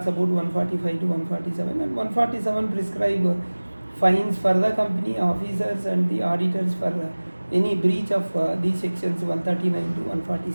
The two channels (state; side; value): inverted; both; correlation -1.00